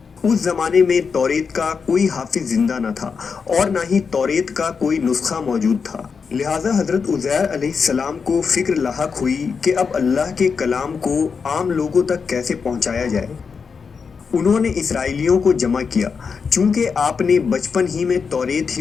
اس زمانے میں توریت کا کوئی حافظ زندہ نہ تھا اور نہ ہی توریت کا کوئی نسخہ موجود تھا، لہٰذا حضرت عزیر علیہ السلام کو فکر لاحق ہوئی کہ اب اللہ کے کلام کو عام لوگوں تک کیسے پہنچایا جائے۔ انہوں نے اسرائیلیوں کو جمع کیا۔ چونکہ آپ نے بچپن ہی میں توریت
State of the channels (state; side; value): quieter; right; 5.6 dB